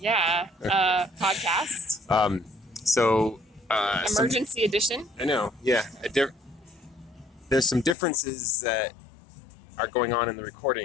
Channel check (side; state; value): right; drops out; at 8.0 s